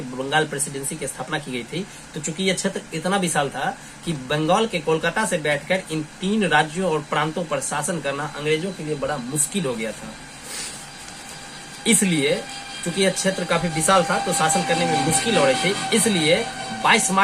बंगाल प्रेसिडेंसी की स्थापना की गई थी, तो चूंकि यह क्षेत्र इतना विशाल था कि बंगाल के कोलकाता से बैठकर इन 3 राज्यों और प्रांतों पर शासन करना अंग्रेजों के लिए बड़ा मुश्किल हो गया था। इसलिए चूंकि यह क्षेत्र काफी विशाल था तो शासन करने में मुश्किल हो रही थी, इसलिए 22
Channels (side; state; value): both; identical; correlation 1.00